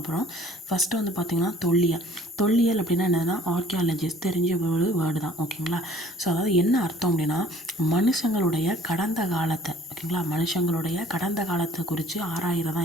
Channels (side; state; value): both; normal; correlation 0.54